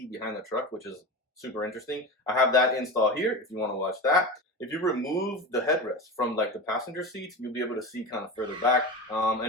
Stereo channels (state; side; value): normal; both; correlation 0.25